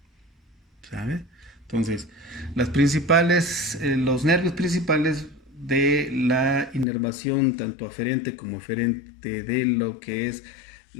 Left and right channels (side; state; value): right; drops out; at 6.9 s